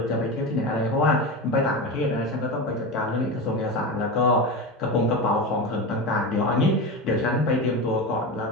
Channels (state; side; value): normal; both; correlation 0.22